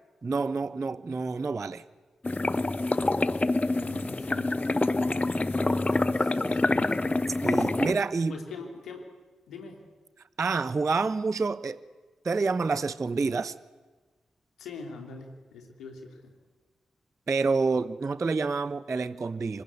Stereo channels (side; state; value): both; normal; correlation 0.90